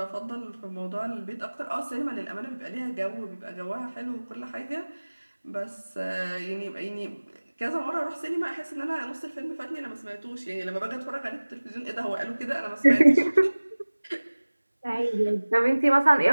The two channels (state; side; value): inverted; both; correlation -1.00